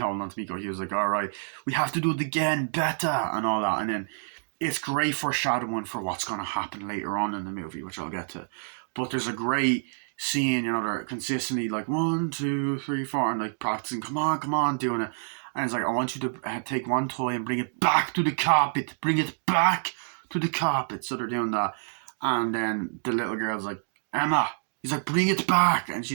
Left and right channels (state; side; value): silent; left; digital silence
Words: Miko Hughes, like, all right, we have to do it again, better, and all that, and then it's great foreshadowing for what's going to happen later on in the movie, which I'll get to. But there's a great scene, they're consistently like 1, 2, 3, 4, and like practicing, come on, doing it. And it's like, I want you to take one toy and bring it back to the carpet. Bring it back to the carpet. So they're doing that. And then the little girl's like, Emma. He's like, bring it back. And